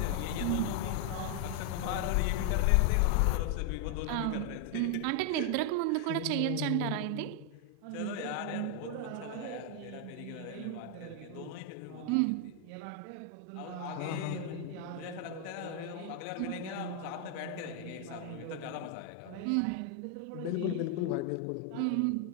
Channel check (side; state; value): both; different; correlation 0.00